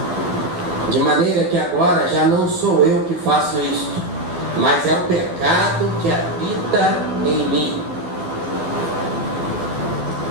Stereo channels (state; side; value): late; left; 12 ms